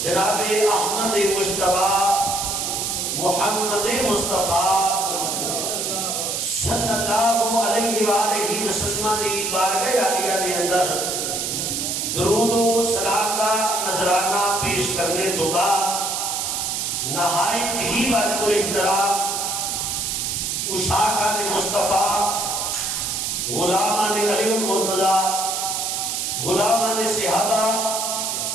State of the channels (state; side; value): noise; right; hiss, 1 dB below the sound